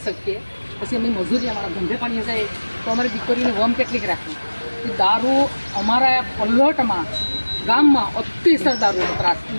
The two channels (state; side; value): inverted; both; correlation -1.00